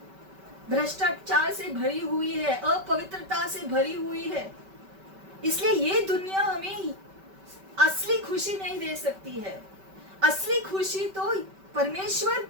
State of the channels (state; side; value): late; left; 5.2 ms